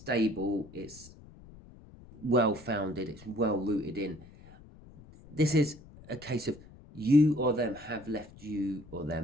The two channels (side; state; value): left; noise; rumble, 21 dB below the sound